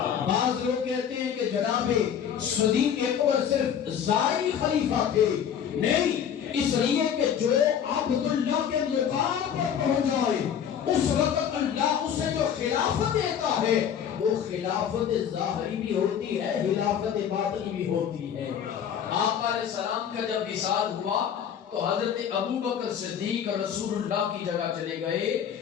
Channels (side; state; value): right; quieter; 8.6 dB